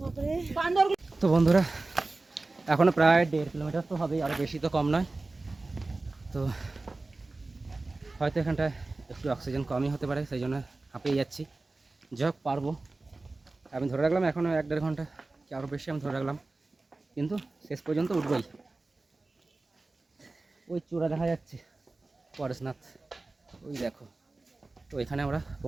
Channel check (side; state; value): left; quieter; 3.3 dB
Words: বান্দর। তো বন্ধুরা এখনও প্রায় 1.5 কিলোমিটার তো হবেই, আরও বেশি তো কম নয়। তো হয়তো এখানটায় একটু অক্সিজেন কমই হতে পারে, সেই জন্য হাঁপিয়ে যাচ্ছি। যাই হোক পারবো, আমি ধরে রাখলাম এখনও 1-1.5 ঘন্টা কি আরও বেশি আমি ধরে রাখলাম, কিন্তু শেষ পর্যন্ত উঠবই। ওই চূড়া দেখা যাচ্ছে পরেশনাথ, ওই দেখো, তো এখানে আমরা